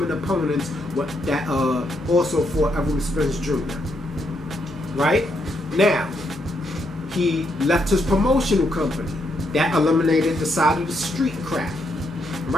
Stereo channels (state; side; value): normal; both; correlation 0.78